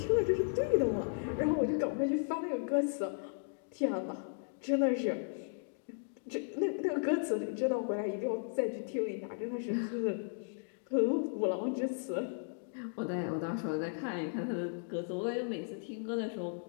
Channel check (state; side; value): silent; right; digital silence